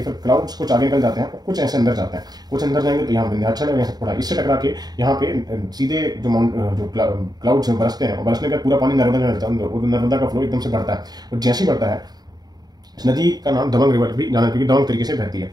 फिर क्लाउड्स कुछ आगे निकल जाते हैं और कुछ ऐसे अंदर जाते हैं। कुछ अंदर जाएंगे तो यहाँ विंध्याचल है, यहाँ थोड़ा इससे टकरा के यहाँ पे सीधे जो क्लाउड्स बरसते हैं और बरसने का पूरा पानी नर्मदा में मिलता है और नर्मदा का फ्लो एकदम से बढ़ता है। और जैसे ही बढ़ता है, इस नदी का नाम दबंग रिवर भी जाना, क्योंकि दबंग तरीके से बहती है।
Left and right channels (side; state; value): left; late; 0.19 ms